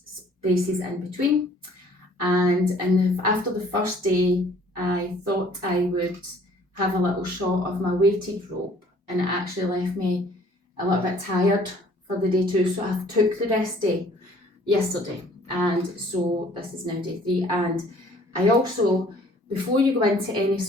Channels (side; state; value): both; normal; correlation 0.56